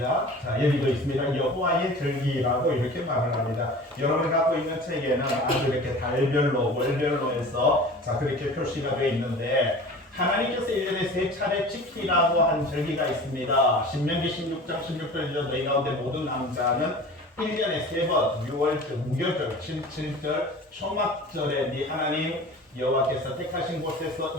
자, 여기도 있습니다. 여호와의 절기라고 이렇게 말을 합니다. 여러분이 갖고 있는 책에는 아주 이렇게 달별로, 월별로 해서 자, 그렇게 표시가 되어 있는데 하나님께서 1년에 3차례 지키라고 한 절기가 있습니다. 신명기 16장 16절이죠. 너희 가운데 모든 남자는 1년에 3번, 6월절, 무교절, 7절, 초막절에 네 하나님 여호와께서 택하신 곳에서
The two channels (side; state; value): both; normal; correlation 0.39